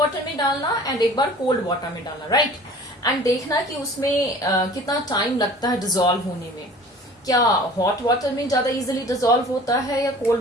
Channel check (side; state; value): both; normal; correlation 0.45